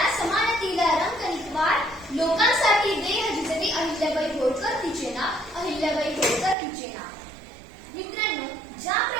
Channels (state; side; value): drops out; left; at 6.6 s